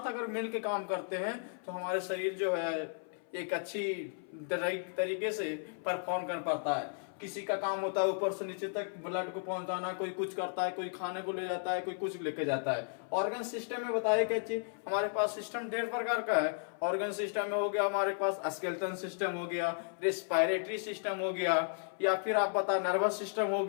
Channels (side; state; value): right; silent; 55 dB below the other